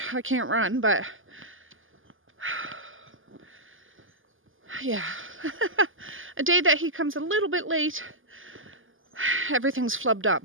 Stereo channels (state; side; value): late; left; 0.58 ms